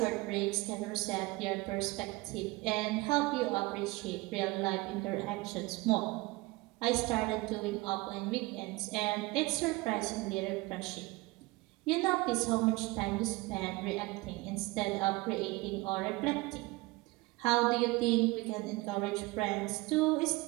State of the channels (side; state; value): left; quieter; 22.3 dB